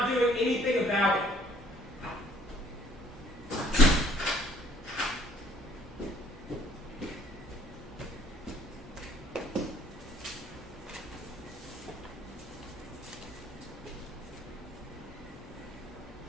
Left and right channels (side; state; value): both; normal; correlation 0.59